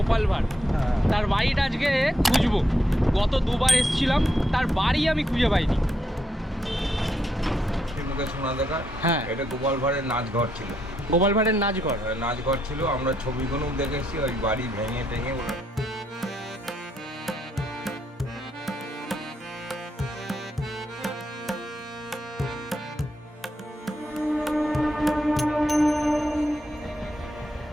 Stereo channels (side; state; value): both; normal; correlation 0.78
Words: ভাঁড়, তার বাড়িটা আজকে খুঁজবো। গত দুবার এসেছিলাম, তার বাড়ি আমি খুঁজে পাইনি। শোনা দেখা, হ্যাঁ, এটা গোপাল ভাঁড়ের নাচঘর ছিল। গোপাল ভাঁড়ের নাচঘর নাচঘর ছিল, আমরা ছবিগুলো দেখেছি। ওই বাড়ি ভেঙে টেঙে